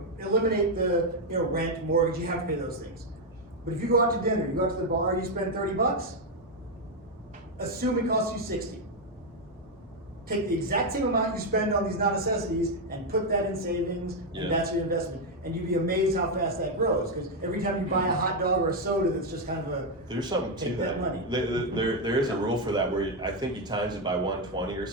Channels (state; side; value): normal; both; correlation 0.03